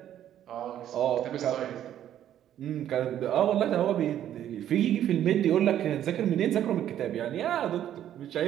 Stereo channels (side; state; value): left; quieter; 11.1 dB